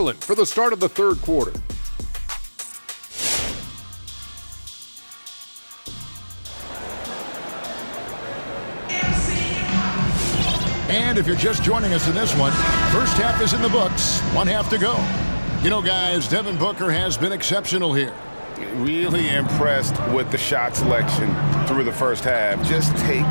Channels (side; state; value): both; inverted; correlation -1.00